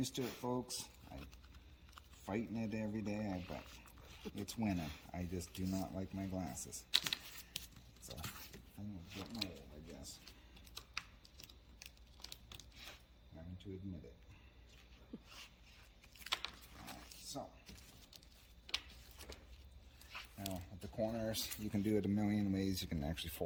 to it, folks. I'm fighting it every day, but it's winning. I just do not like my glasses. It's a thing of getting old, I guess. Having to admit it. Alright, so. Now, at the corners, you can do it a million ways. You can actually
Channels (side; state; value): both; identical; correlation 1.00